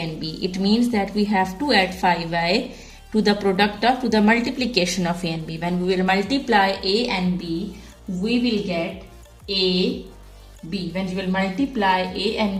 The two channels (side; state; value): both; identical; correlation 1.00